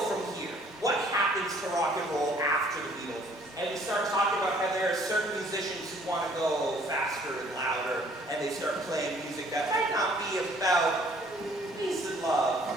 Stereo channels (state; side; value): normal; both; correlation 0.58